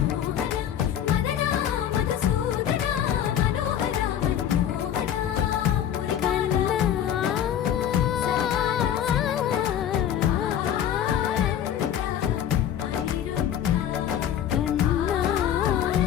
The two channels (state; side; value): quieter; right; 9.9 dB